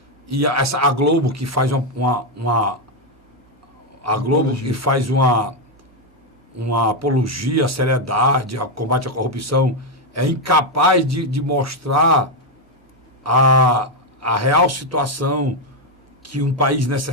e a Globo, que faz uma apologia à seriedade, ao combate à corrupção, é incapaz de mostrar a real situação que um país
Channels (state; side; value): normal; both; correlation 0.04